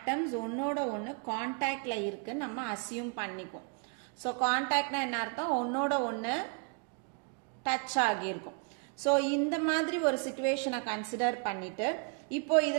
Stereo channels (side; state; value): left; quieter; 39.0 dB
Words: ஒன்னோட ஒன்று கான்டாக்ட்ல இருக்குன்னு நம்ம அசியூம் பண்ணிக்குவோம். ஸோ கான்டாக்ட்னா என்ன அர்த்தம், ஒன்னோட ஒன்று டச் ஆகியிருக்கும். ஸோ இந்த மாதிரி ஒரு சிச்சுவேஷனை கன்சிடர் பண்ணிட்டு இப்போ